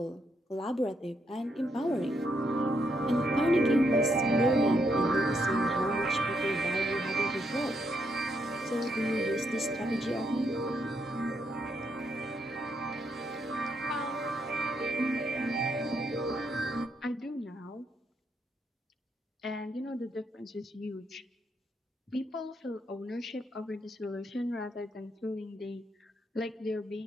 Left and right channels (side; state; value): both; normal; correlation 0.77